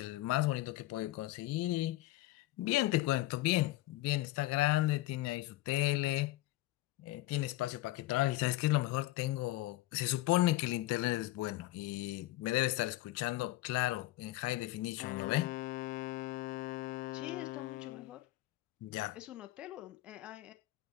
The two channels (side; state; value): right; quieter; 17.2 dB